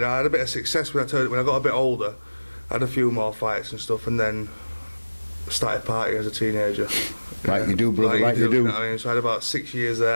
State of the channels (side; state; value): both; inverted; correlation -1.00